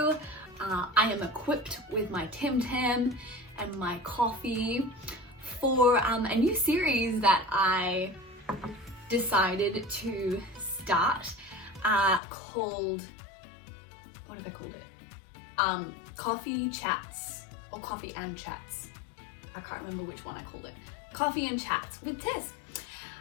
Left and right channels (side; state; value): right; drops out; at 12.2 s